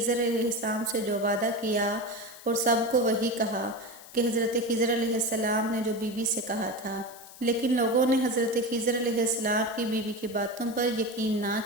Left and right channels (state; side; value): noise; left; hiss, 19 dB below the sound